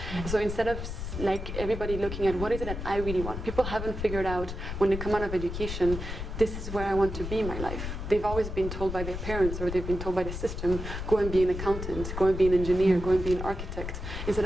So instead of like everybody looking at what is it that I really want, people haven't figured out when they come out of education, this is where I want to be in my life. They've always been told by their parents, or they've been told by the system, go and be an accountant, go and be an engineer, go and be an architect, instead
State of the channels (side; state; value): left; noise; rumble, 6 dB below the sound